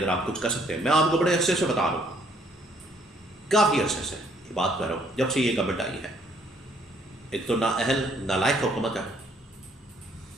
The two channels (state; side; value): normal; both; correlation 0.65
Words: آپ کچھ کر سکتے ہیں۔ میں آپ کو بڑے عرصے سے بتا رہا ہوں، کافی عرصے سے یہ بات کر رہا ہوں، جب سے یہ گورنمنٹ آئی ہے۔ ایک تو نااہل، نالائق حکومت ہے،